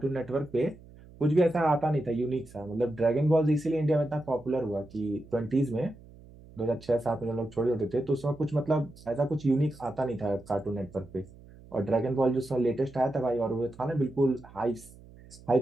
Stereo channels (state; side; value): noise; right; hum, 21 dB below the sound